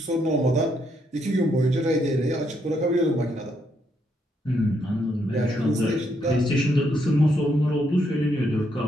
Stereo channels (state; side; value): normal; both; correlation 0.76